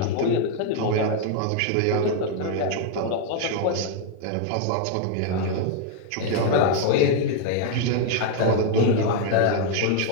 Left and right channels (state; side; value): different; both; correlation 0.00